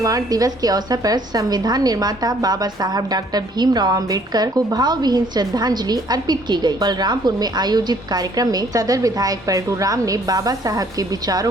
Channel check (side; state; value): both; normal; correlation 0.61